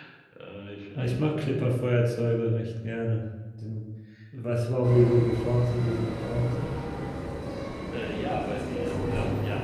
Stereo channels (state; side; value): identical; both; correlation 1.00